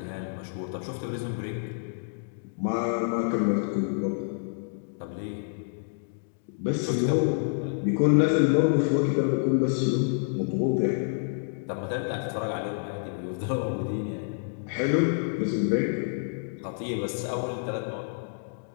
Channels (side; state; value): right; silent; digital silence